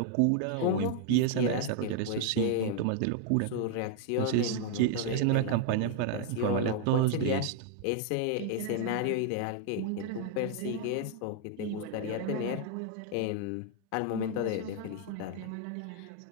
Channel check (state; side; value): different; both; correlation 0.00